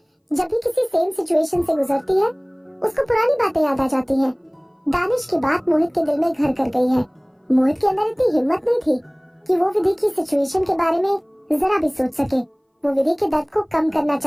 जब भी किसी सेम सिचुएशन से गुजरती है उसको पुरानी बातें याद आ जाती हैं। दानिश की बात मोहित के दिल में घर कर गई है। मोहित के अंदर इतनी हिम्मत नहीं थी कि वो विधि की सिचुएशन के बारे में जरा भी सोच सके। वो विधि के दर्द को कम करना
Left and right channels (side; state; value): both; identical; correlation 1.00